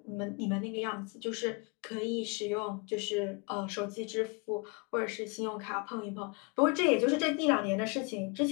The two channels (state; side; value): quieter; right; 31.2 dB